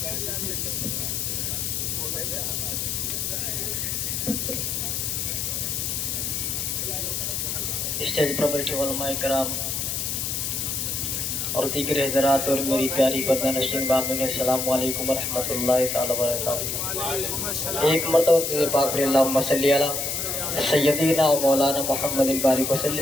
स्टेज पर बैठे उलमाए कराम और दीगर हज़रात और मेरी प्यारी पर्दा नशीन बामिन, अस्सलाम वालेकुम व रहमतुल्लाहि तआला व बरकातहू। एक मरतबा तुझे पाक रे अल्लाहुम्मा सल्ली अला सय्यदीना व मौलाना मुहम्मदिन बारिक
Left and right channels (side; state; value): left; noise; hiss, 1 dB below the sound